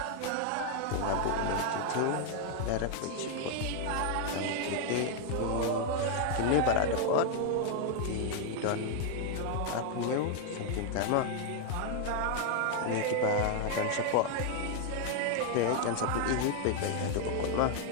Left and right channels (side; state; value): both; different; correlation 0.00